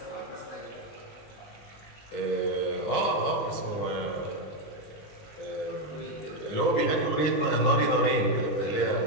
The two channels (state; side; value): late; right; 20 ms